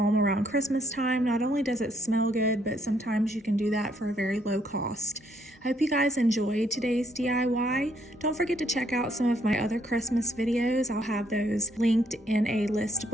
around Christmas time. Not only does it smell good, but sometimes you can do that for a very low cost. I hope you guys enjoyed today's DIY. Don't forget to check out some of my other Christmas videos. I'll have those linked in a list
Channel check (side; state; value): both; normal; correlation 0.70